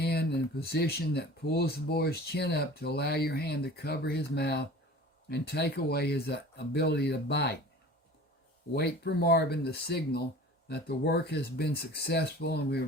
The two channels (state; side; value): normal; both; correlation 0.41